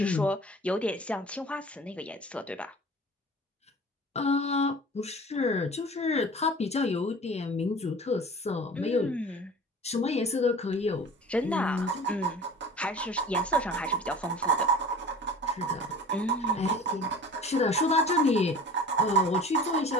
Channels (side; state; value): both; normal; correlation 0.41